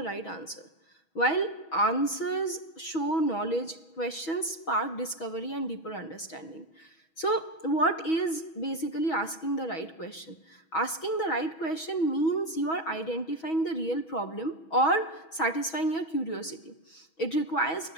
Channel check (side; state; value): right; late; 6.2 ms